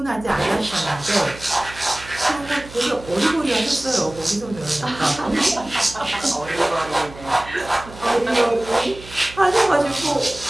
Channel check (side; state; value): right; noise; hum, 17 dB below the sound